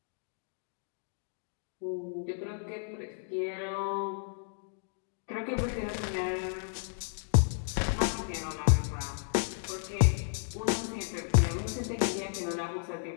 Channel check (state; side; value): silent; right; digital silence